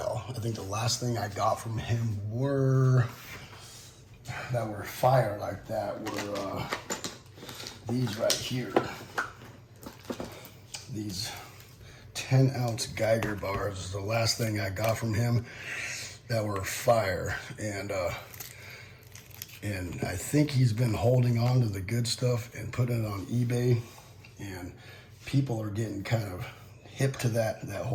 I think the last thing I got from him that were fire like that were these right here. These 10-ounce Geiger bars is the last thing I got from him that were fire. And I think he's been holding on to the good stuff and putting it on eBay, and people are getting kind of hip to that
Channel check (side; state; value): both; identical; correlation 1.00